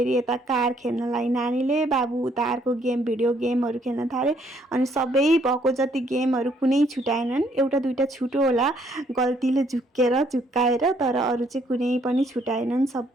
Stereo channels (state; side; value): normal; both; correlation 0.67